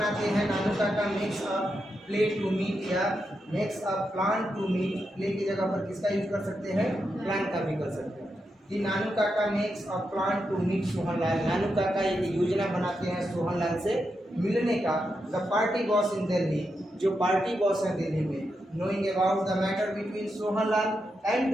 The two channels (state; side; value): normal; both; correlation 0.85